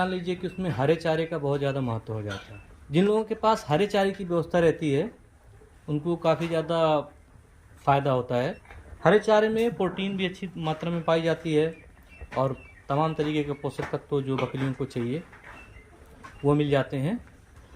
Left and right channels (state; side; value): identical; both; correlation 1.00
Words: लीजिए कि उसमें हरे चारे का बहुत ज़्यादा महत्व हो जाता है। जिन लोगों के पास हरे चारे की व्यवस्था रहती है उनको काफ़ी ज़्यादा फ़ायदा होता है। हरे चारे में प्रोटीन भी अच्छी मात्रा में पाई जाती है और तमाम तरीके के पोषक तत्व जो बकरियों को चाहिए वो मिल जाते हैं।